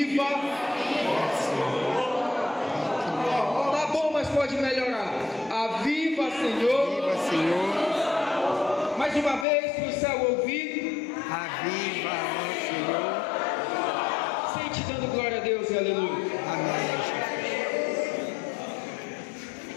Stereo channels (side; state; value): right; drops out; at 9.5 s